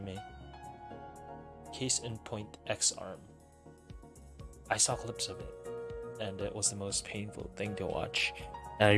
Case in point, X-Arm. I saw clips of it, and it was the most painful thing to watch. And I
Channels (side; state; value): both; identical; correlation 1.00